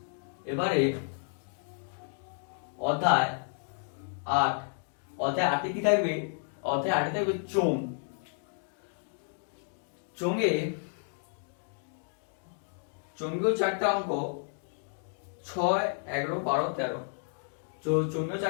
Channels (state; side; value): silent; right; digital silence